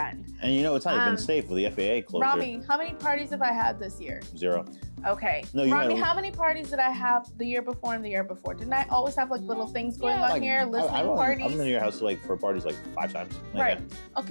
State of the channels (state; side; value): inverted; both; correlation -1.00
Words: And it's not even safe with the FAA closure. Rami, how many parties have I had this year? 0. Okay. No, you Rami, had- how many parties did I have the year before and the year before? Didn't I always have like little things going on like, here, listening parties? I've been to your house like for parties like 5 times. Right.